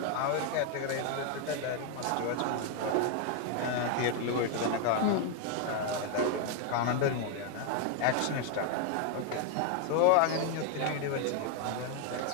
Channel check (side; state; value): both; different; correlation 0.01